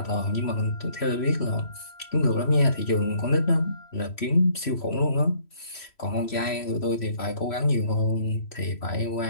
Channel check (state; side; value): late; right; 3.1 ms